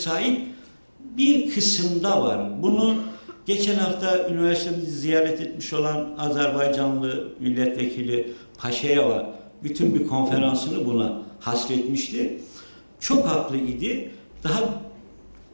bir kısımda var. Bunu geçen hafta üniversitemizi ziyaret etmiş olan Azerbaycanlı milletvekili Paşayeva bütün bir konferansını buna hasretmişti. Çok haklı idi. Daha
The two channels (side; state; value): both; inverted; correlation -1.00